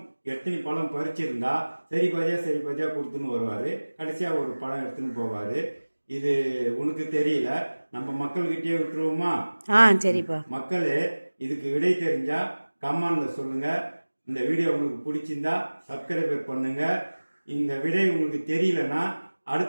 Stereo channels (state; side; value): inverted; both; correlation -1.00